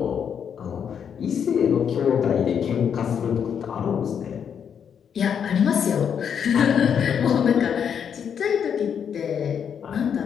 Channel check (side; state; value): right; quieter; 7.8 dB